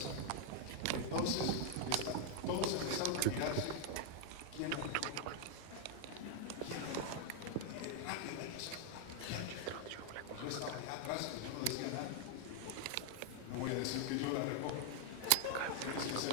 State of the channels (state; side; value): different; both; correlation 0.00